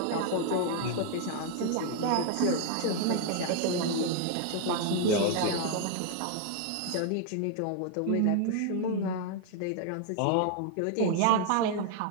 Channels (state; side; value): different; both; correlation 0.00